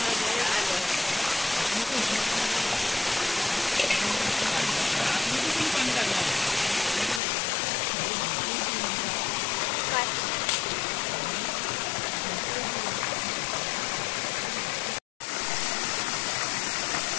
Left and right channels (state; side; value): drops out; right; at 7.2 s